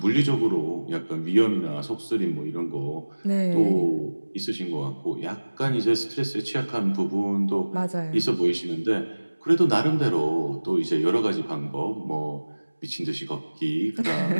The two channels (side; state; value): both; inverted; correlation -1.00